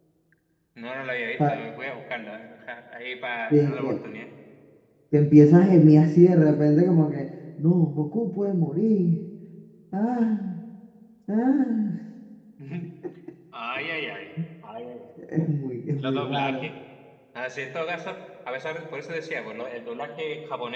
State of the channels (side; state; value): both; identical; correlation 1.00